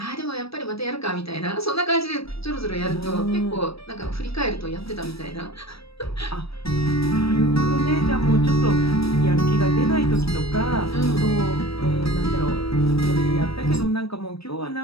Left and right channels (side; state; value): right; late; 0.77 ms